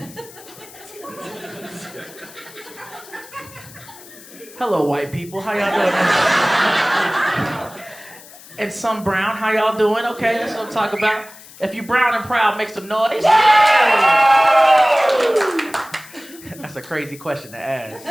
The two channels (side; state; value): left; noise; hiss, 20 dB below the sound